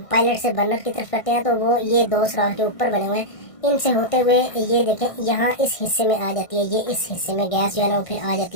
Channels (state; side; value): late; right; 1.6 ms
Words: पायलट से बर्नर की तरफ करते हैं, तो वो ये दो सुराख जो ऊपर बने हुए हैं, इनसे होते हुए ये देखें यहाँ इस हिस्से में आ जाती है। ये इस हिस्से में गैस जो है ना वो फिर आ